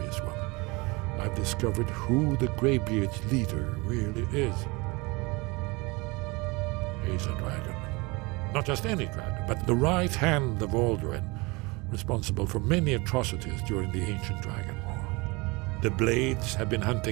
one. I've discovered who the Greybeard's leader really is. He's a dragon. Not just any dragon, but the right hand of Alduin, responsible for many atrocities during the ancient Dragon War. The Blades have been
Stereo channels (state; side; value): quieter; left; 25.6 dB